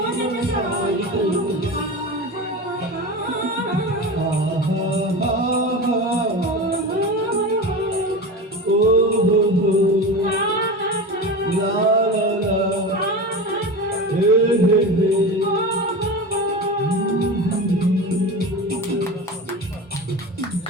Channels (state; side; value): normal; both; correlation 0.27